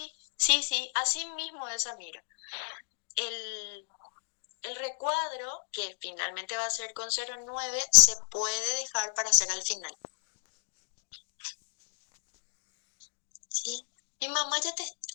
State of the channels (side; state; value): right; silent; digital silence